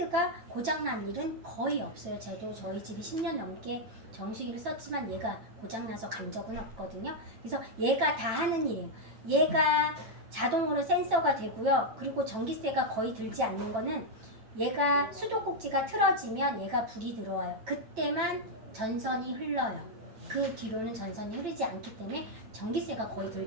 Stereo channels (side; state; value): left; late; 9.1 ms